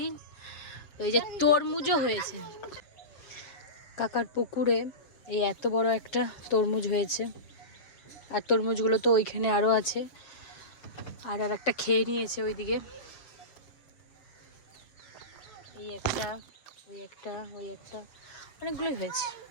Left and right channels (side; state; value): right; late; 7.5 ms